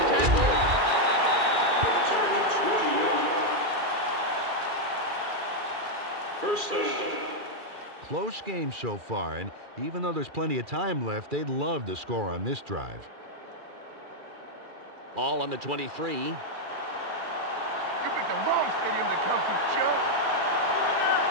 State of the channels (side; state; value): left; late; 2.4 ms